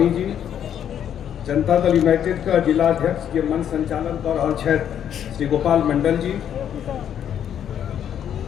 जी, जनता दल यूनाइटेड का जिला अध्यक्ष के मन संचालन कर रहा छथि श्री गोपाल मंडल जी,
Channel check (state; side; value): quieter; right; 9.5 dB